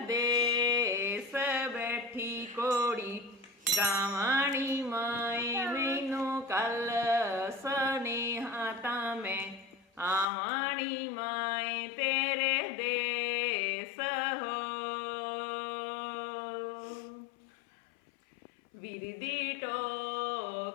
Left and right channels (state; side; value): drops out; right; at 10.2 s